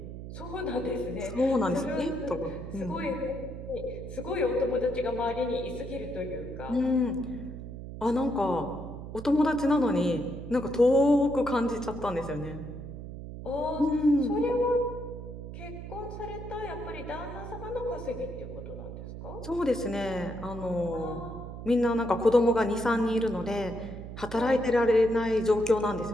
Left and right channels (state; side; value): noise; right; hum, 10 dB below the sound